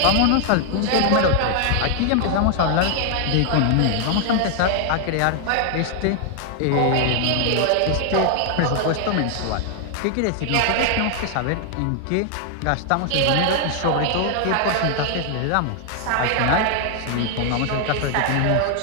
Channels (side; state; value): both; different; correlation 0.00